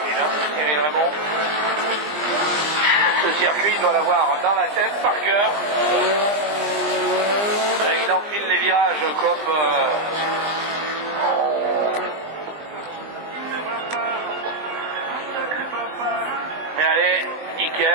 hein, Cyril Raymond. Ce circuit, il doit l'avoir dans la tête, par cœur. Il enfile les virages comme... Mais allez,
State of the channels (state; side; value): late; left; 20 ms